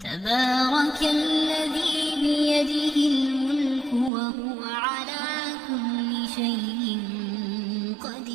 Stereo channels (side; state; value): left; drops out; at 4.1 s